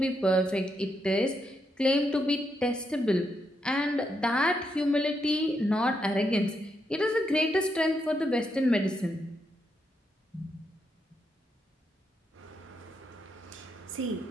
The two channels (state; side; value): normal; both; correlation 0.81